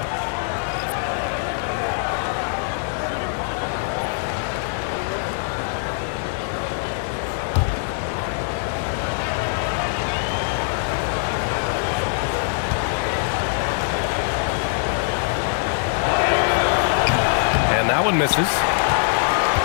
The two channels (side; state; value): right; silent; digital silence